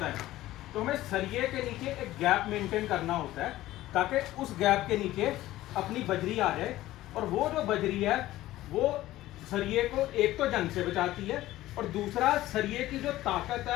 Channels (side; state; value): right; quieter; 15.7 dB